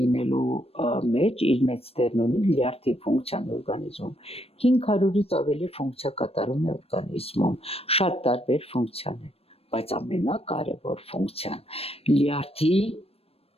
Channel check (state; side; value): late; right; 0.28 ms